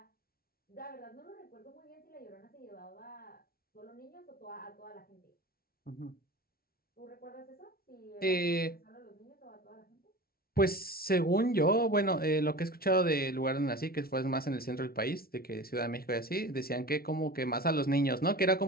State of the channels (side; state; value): right; late; 0.44 ms